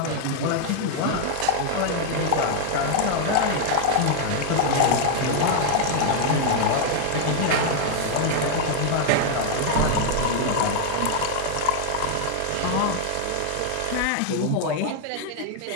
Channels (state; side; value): different; both; correlation 0.00